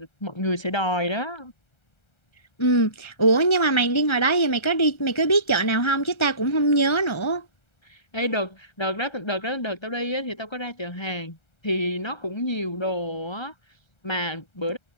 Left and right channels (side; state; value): right; late; 1.3 ms